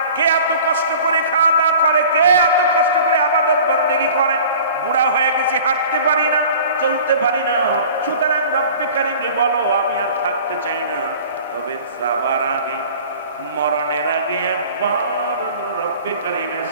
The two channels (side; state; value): both; inverted; correlation -0.44